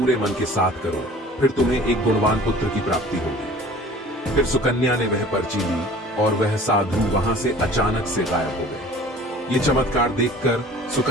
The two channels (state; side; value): normal; both; correlation 0.46